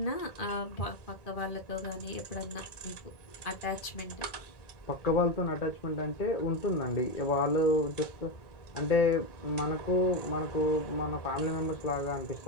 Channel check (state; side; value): late; right; 1.8 ms